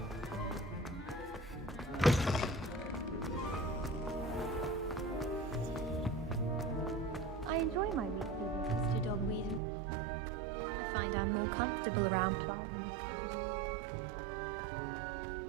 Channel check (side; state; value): left; drops out; at 9.6 s